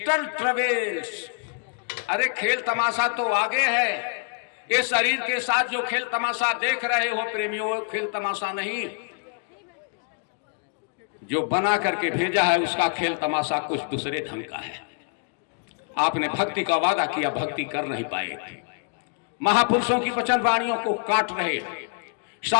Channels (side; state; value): right; quieter; 39.6 dB